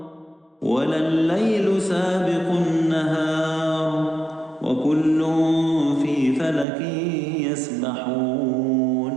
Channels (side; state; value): left; drops out; at 6.7 s